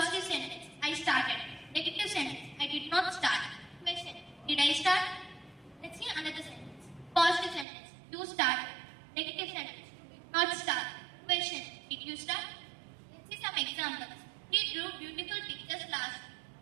sentence, I started. Negative sentence, I did not start. Question, did I start? Let's see another sentence. Positive sentence, you started. Negative sentence, you did not start. Question, did you start? Let's see some examples. He drew beautiful pictures last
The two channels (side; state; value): left; drops out; at 7.7 s